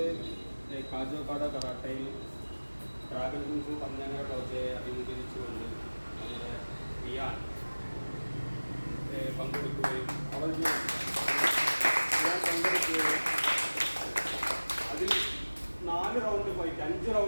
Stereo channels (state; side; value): inverted; both; correlation -1.00